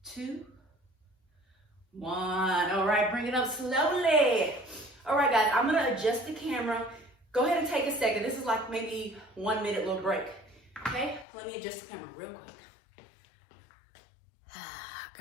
2, 1. All right, bring it up slowly. All right, guys, I'm gonna adjust the camera. Go ahead and take a second. This is like maybe 1 minute little break. Okay, let me adjust the camera real quick.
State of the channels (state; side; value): drops out; right; at 11.2 s